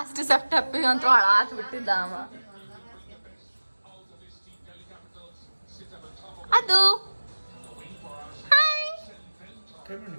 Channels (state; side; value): inverted; both; correlation -1.00